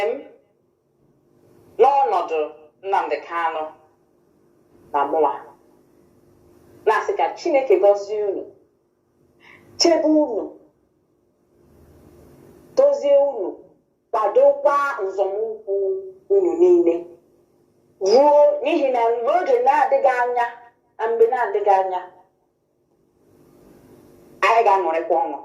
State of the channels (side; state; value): both; identical; correlation 1.00